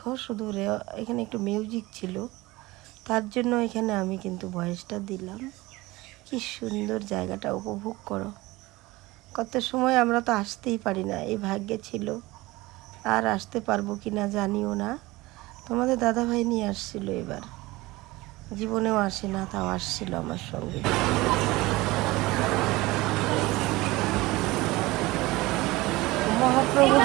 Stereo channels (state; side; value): quieter; left; 20.4 dB